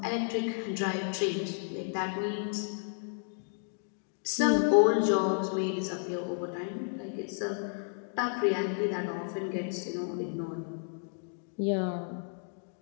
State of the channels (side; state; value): right; silent; 56 dB below the other